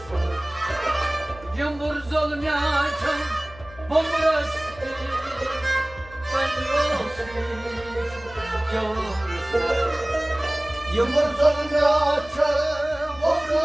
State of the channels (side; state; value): left; noise; hum, 20 dB below the sound